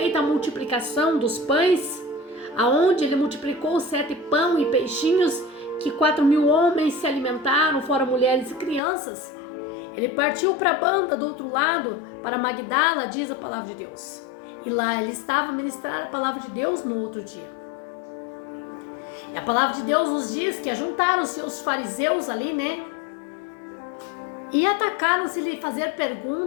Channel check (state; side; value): drops out; right; at 8.8 s